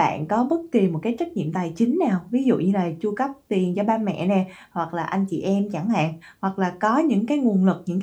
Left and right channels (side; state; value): both; identical; correlation 1.00